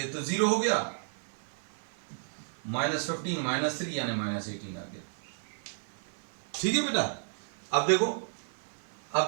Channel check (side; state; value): left; silent; digital silence